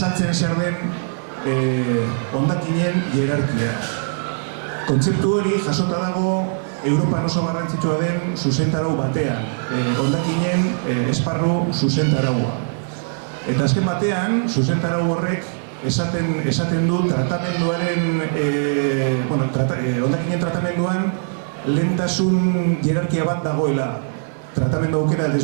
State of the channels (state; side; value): silent; left; 61 dB below the other